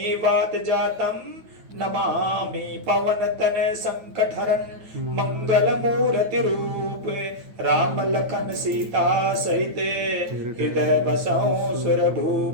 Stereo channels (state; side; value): late; left; 9.1 ms